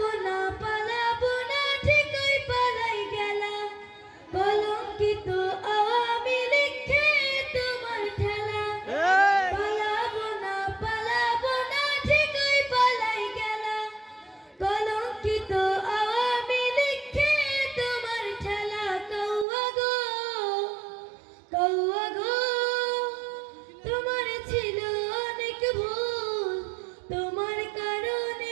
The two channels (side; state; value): left; drops out; at 19.5 s